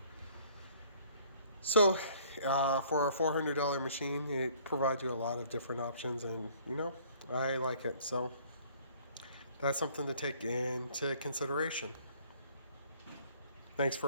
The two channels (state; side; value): inverted; both; correlation -0.57